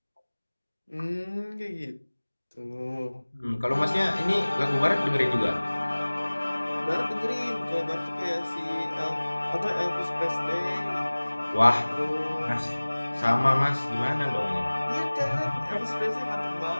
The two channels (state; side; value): inverted; both; correlation -1.00